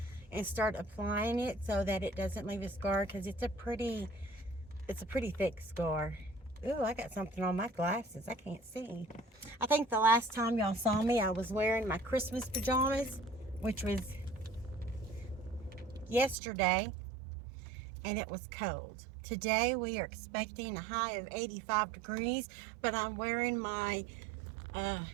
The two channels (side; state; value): left; drops out; at 16.4 s